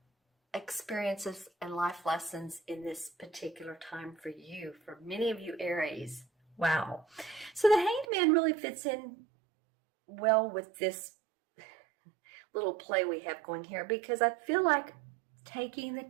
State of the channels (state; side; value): drops out; left; at 8.1 s